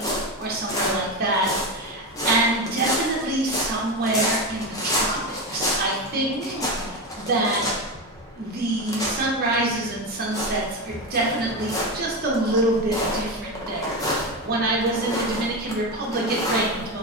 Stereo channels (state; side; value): normal; both; correlation 0.17